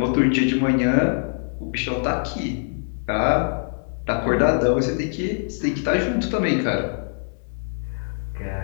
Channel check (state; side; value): silent; right; digital silence